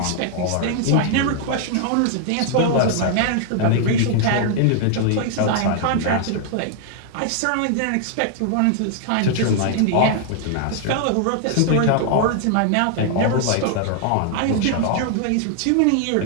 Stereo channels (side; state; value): both; different; correlation 0.00